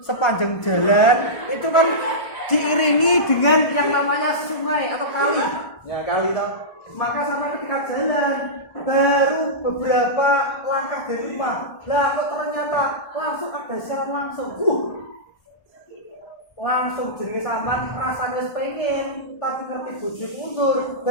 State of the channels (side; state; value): right; late; 1.4 ms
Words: sepanjang jalan itu kan diiringi dengan yang namanya sungai atau kali. Ya kali toh. Maka sampai ketika jalan baru beberapa langkah dari rumah, lah kok ternyata langsung ada siaran langsung. Langsung jenenge sampean rasanya pengen tapi ngerti bojo mundur